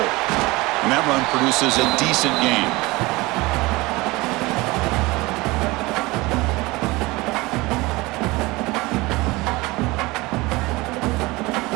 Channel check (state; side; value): quieter; left; 22.1 dB